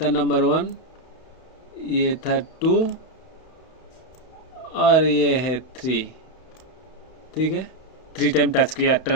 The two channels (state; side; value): late; right; 31 ms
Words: नंबर 1, ये था 2 और ये है 3। ठीक है, 3 टाइम टच किया